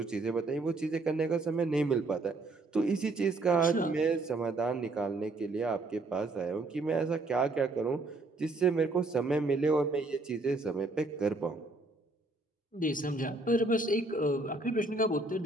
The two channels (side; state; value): left; quieter; 3.1 dB